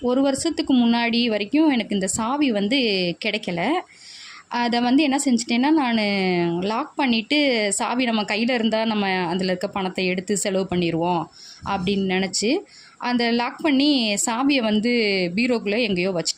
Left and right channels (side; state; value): both; identical; correlation 1.00